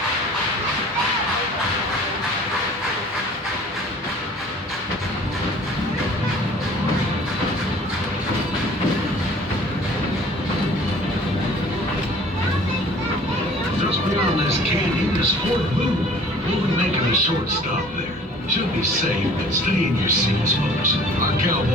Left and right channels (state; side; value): normal; both; correlation 0.49